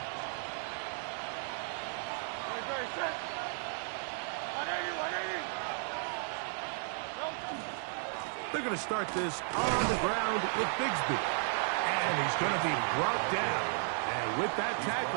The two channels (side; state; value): left; silent; 55 dB below the other